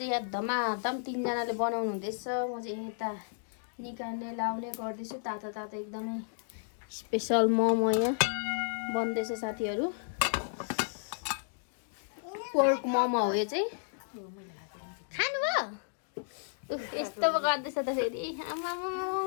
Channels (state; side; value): silent; right; digital silence